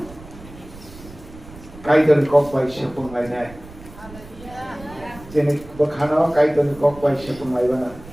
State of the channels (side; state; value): right; noise; rumble, 18 dB below the sound